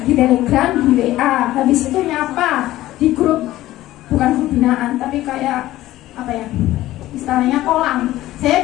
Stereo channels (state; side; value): quieter; right; 15.5 dB